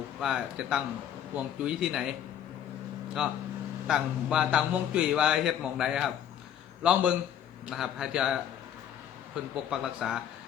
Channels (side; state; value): right; quieter; 9.9 dB